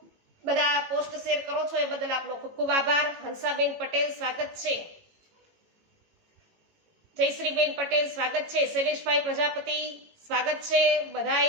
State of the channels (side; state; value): left; late; 18 ms